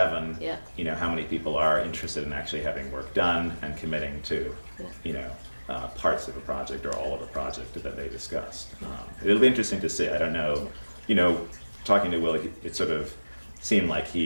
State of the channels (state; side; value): inverted; both; correlation -1.00